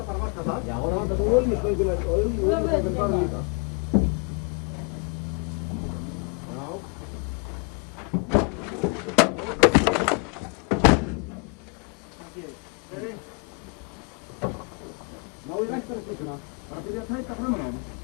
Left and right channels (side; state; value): right; quieter; 35.2 dB